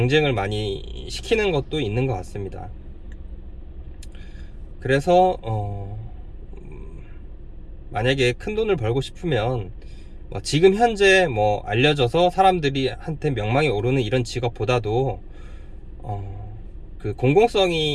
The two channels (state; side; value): identical; both; correlation 1.00